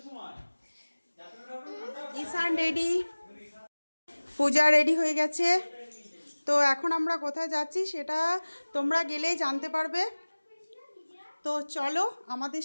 ঈশান রেডি, পূজা রেডি হয়ে গেছে। তো এখন আমরা কোথায় যাচ্ছি সেটা তোমরা গেলেই জানতে পারবে। তো চলো আমাদের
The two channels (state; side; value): inverted; both; correlation -1.00